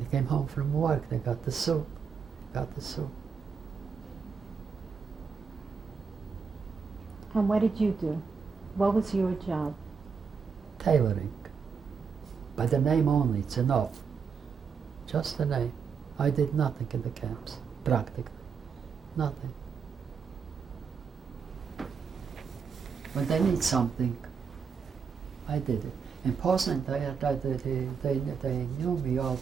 came home from work, they got the soup. And what did you do? What was your job? Tailoring. By the name only, it's enough. Just the name. I did nothing in the camps, practically. Nothing. When they need something, I did it. In Poznan, they knew me, all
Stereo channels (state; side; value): quieter; left; 5.9 dB